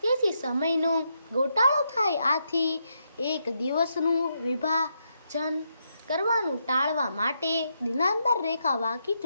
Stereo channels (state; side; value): inverted; both; correlation -0.80